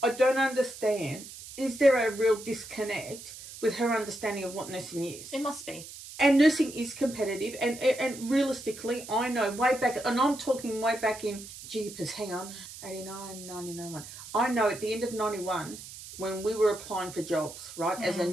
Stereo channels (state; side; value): noise; right; hiss, 14 dB below the sound